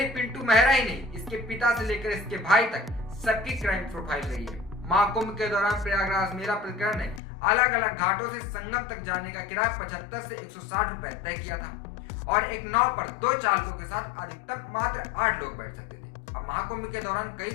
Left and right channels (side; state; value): right; drops out; at 7.2 s